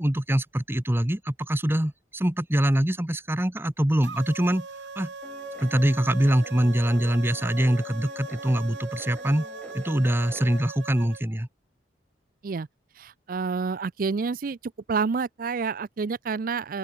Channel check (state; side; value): normal; both; correlation 0.84